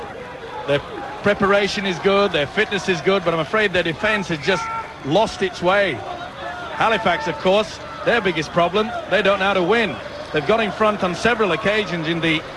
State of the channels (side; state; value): both; identical; correlation 1.00